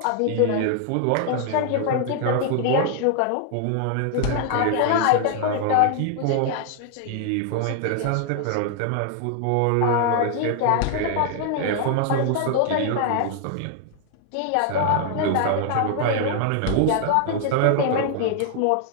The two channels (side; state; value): both; different; correlation 0.00